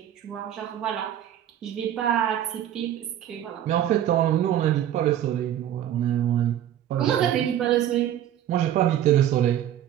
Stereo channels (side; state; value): left; quieter; 11.1 dB